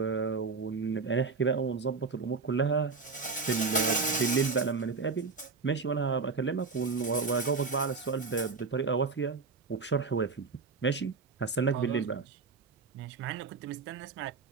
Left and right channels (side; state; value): left; quieter; 4.6 dB